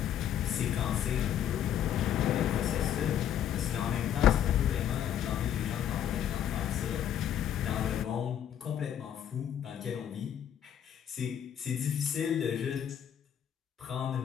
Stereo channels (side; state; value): right; quieter; 9.9 dB